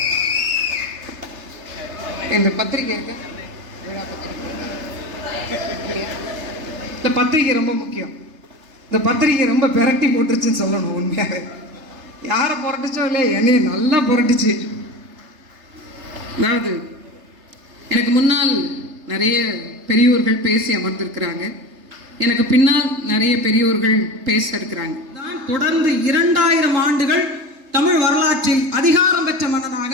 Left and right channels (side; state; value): left; late; 3.3 ms